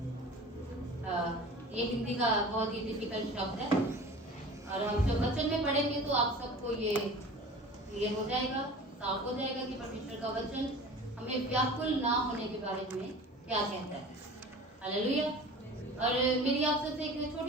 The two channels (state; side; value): normal; both; correlation 0.40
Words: ये हिंदी का बहुत ही डिफिकल्ट शब्द है और हम जब वचन में पढ़ेंगे तो आप सबको ये क्लियर हो जाएगा, साफ हो जाएगा कि परमेश्वर का वचन हमें व्याकुल ना होने के बारे में क्या कहता है। हालेलुया। और मेरी आप सबसे एक